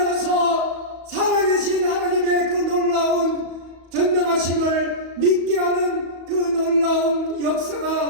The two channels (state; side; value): late; left; 34 ms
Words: 살아계신 하나님의 그 놀라운 전능하심을 믿게 하는 그 놀라운